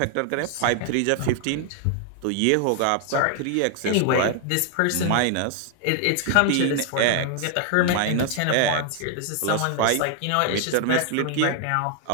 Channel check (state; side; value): different; both; correlation 0.00